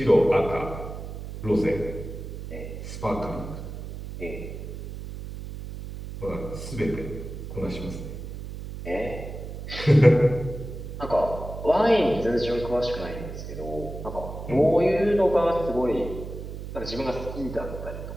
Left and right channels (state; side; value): noise; right; hum, 9 dB below the sound